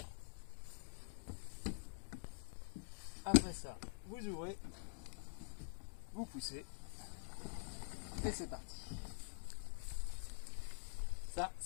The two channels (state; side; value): silent; right; digital silence